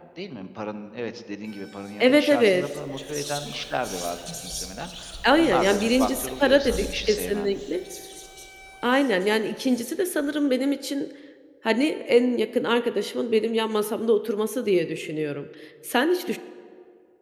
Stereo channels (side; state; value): both; identical; correlation 1.00